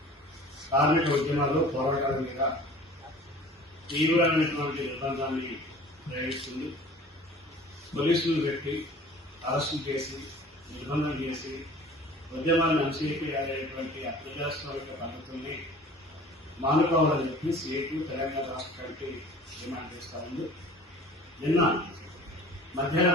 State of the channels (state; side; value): normal; both; correlation 0.45